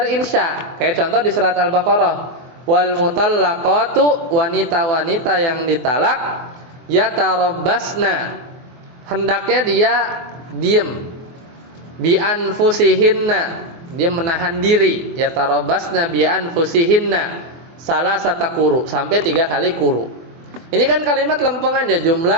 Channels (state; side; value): late; left; 24 ms